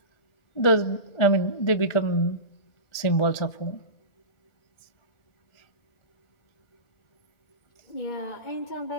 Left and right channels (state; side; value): late; right; 1.4 ms